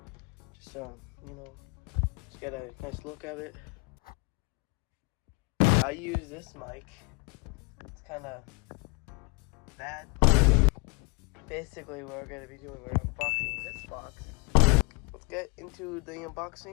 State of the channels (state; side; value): quieter; right; 30.9 dB